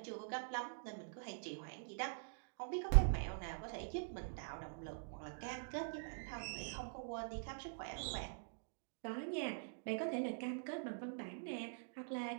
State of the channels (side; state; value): left; silent; digital silence